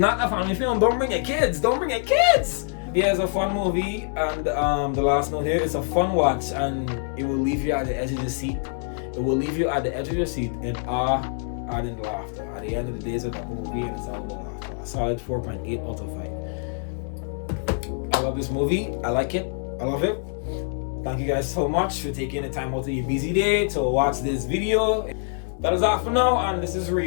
a family film. Don't bring your kids. Don't bring your kids. Yeah, it's a fun movie, and the last note here, it's a fun watch, and it will leave you at the edge of the seat. It will leave you at the edge of your seat in awe and in laughter. At the end of the day, it's a double movie, and it's all about laughter. A solid 4.8 out of 5. I love this movie. I like it. I love it. Thank you guys so much for taking the time out of your busy day to watch this video. That is all for now, and this is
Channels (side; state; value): right; silent; 62 dB below the other